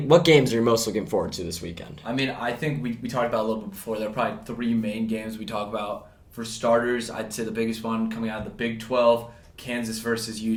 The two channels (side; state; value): both; identical; correlation 1.00